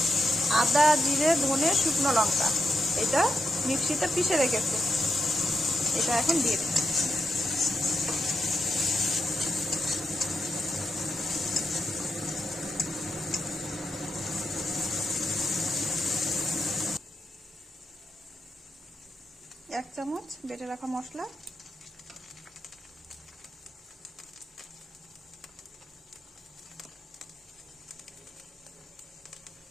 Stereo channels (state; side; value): normal; both; correlation 0.84